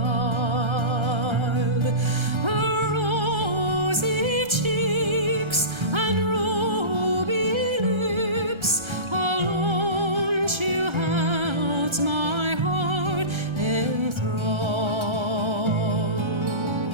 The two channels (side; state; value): left; late; 1.3 ms